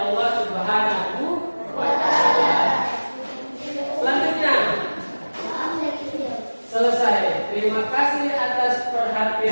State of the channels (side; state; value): both; inverted; correlation -1.00